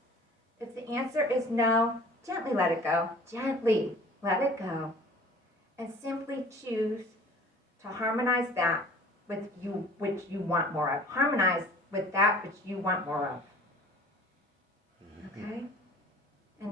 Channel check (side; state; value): both; normal; correlation 0.47